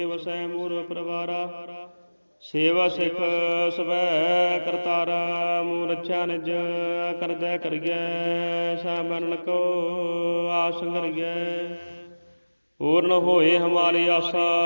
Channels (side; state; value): both; inverted; correlation -1.00